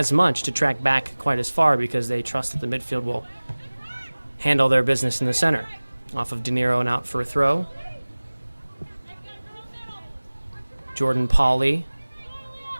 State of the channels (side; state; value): both; inverted; correlation -1.00